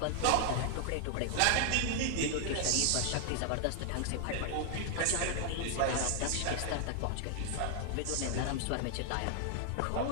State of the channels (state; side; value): different; both; correlation 0.00